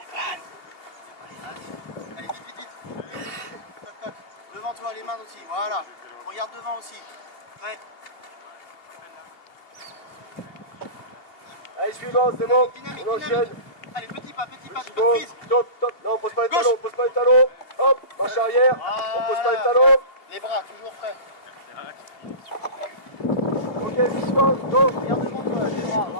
Allez, vite. Toc. Devant toi, les mains aussi, voilà. Regarde devant aussi. Prêt. Allez, suivant, c'est bon. Dynamique. On enchaîne. Allez, petit pas, tu peux prise. Top. Non, on pose pas les talons, Hop, marche arrière. On pose pas les talons. Les bras, toujours prêts. Ok, suivant, go. Regarde devant toi, les bras,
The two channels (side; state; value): right; late; 2.8 ms